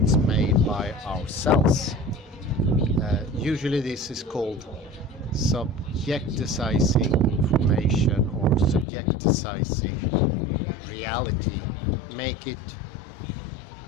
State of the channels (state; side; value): drops out; right; at 8.8 s